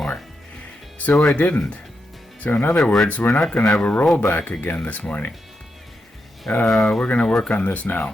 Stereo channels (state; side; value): normal; both; correlation 0.85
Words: so I didn't. So in other words, we're not going to have a rollback again this morning. We're going to work on this